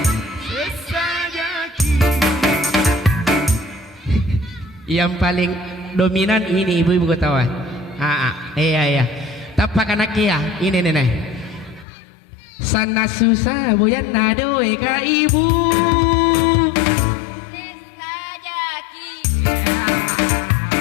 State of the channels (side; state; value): right; drops out; at 11.9 s